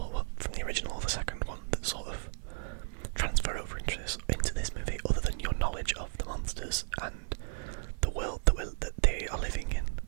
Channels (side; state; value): left; silent; 55 dB below the other